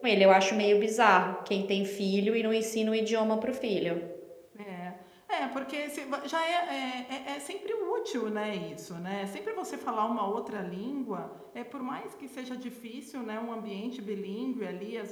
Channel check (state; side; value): identical; both; correlation 1.00